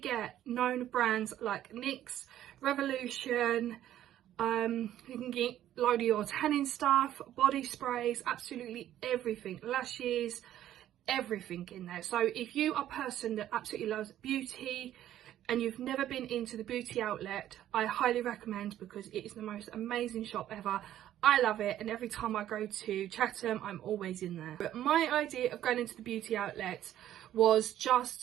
known brands like NYX, Revolution. You can get load of your tanning stuff, body sprays, absolutely everything, lashes, everything in there. So if you are a person that absolutely loves beauty and you've never been into the beauty outlet, I highly recommend, because it is the most amazing shop ever. I love it, and every time I go to Chatham, I'm always in there. But my idea of going into the beauty outlet was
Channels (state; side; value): quieter; left; 12.2 dB